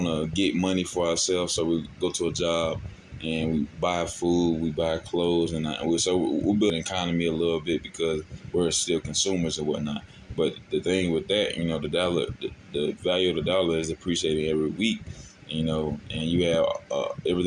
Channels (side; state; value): both; identical; correlation 1.00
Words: to get money for ourselves, so we go to a job and we buy food, we buy clothes, and we'll build an economy a little bit because we're still consumers and whatnot. But the thing with that, the value of the dollar is appreciating every week. And you have